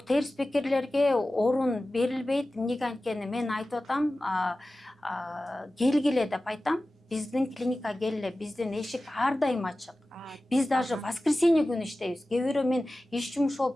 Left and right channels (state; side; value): normal; both; correlation 0.96